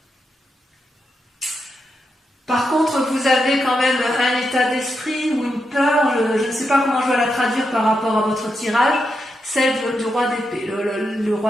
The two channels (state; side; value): normal; both; correlation 0.85